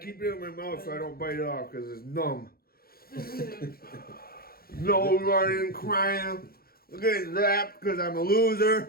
Keep it in my mouth so I don't bite it off because it's numb. No running, crying. Look at that because I'm a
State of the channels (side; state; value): right; late; 0.44 ms